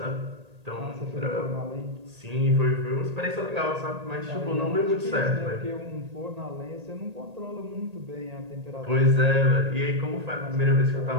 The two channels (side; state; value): left; late; 1.8 ms